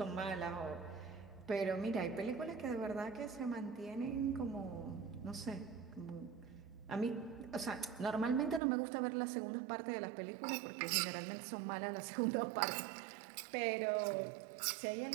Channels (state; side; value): drops out; left; at 8.6 s